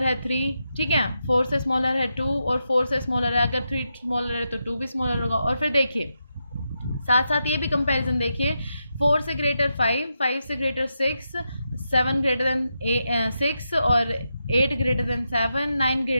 है 3, ठीक है, 4 से स्मॉलर है 2, और 4 से स्मॉलर है, अगर 3 स्मॉलर है तो 2 भी स्मॉलर होगा। और फिर देखिए साथ साथ ये भी कंपैरिजन देखिए, 4 से ग्रेटर 5, 5 से ग्रेटर 6, 7 ग्रेटर देन 6, और 8 greater than 7, 9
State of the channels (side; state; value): both; inverted; correlation -0.86